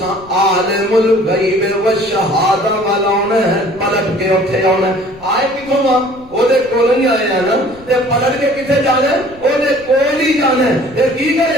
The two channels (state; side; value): noise; left; rumble, 23 dB below the sound